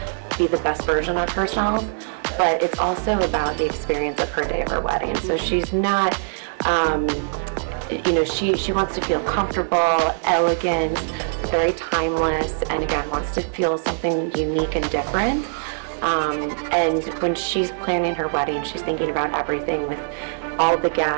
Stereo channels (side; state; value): left; silent; digital silence